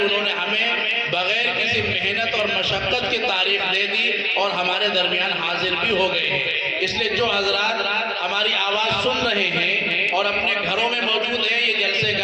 انہوں نے ہمیں بغیر کسی محنت اور مشقت کی تاریخ دے دی اور ہمارے درمیان حاضر بھی ہو گئے ہیں. اس لیے جو حضرات ہماری آواز سن رہے ہیں اور اپنے گھروں میں موجود ہیں، یہ جلسے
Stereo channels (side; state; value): both; identical; correlation 1.00